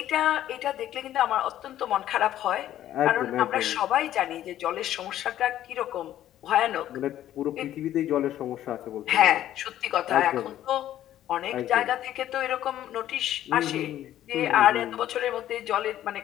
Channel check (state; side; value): quieter; right; 12.4 dB